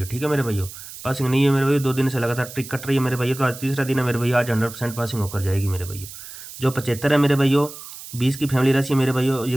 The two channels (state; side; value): noise; right; hiss, 14 dB below the sound